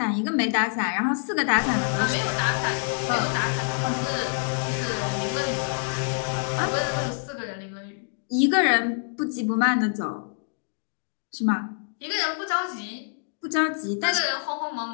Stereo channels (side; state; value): right; silent; digital silence